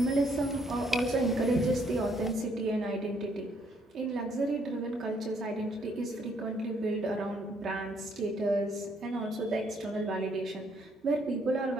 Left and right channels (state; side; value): normal; both; correlation 0.69